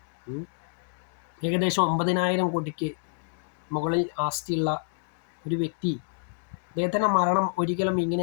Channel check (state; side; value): silent; right; digital silence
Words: ഏകദേശം 9,000 കോടിക്ക് മുകളിൽ ആസ്തിയുള്ള ഒരു വ്യക്തി, അദ്ദേഹത്തിൻ്റെ മരണം ഒരിക്കലും